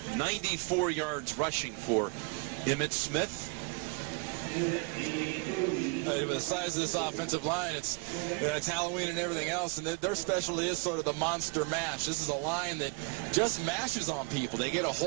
94 yards rushing for Emmitt Smith. With the size of this offensive line, it's Halloween and everything else, and their specialty is sort of the monster mash. This is a line that just mashes on people. They get a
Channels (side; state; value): left; quieter; 31.3 dB